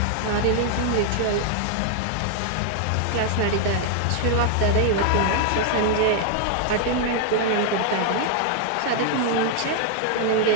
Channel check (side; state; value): both; different; correlation 0.00